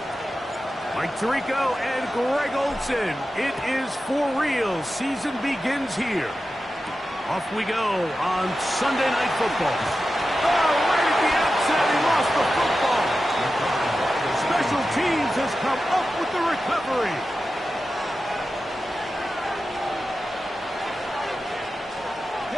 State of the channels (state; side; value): normal; both; correlation 0.92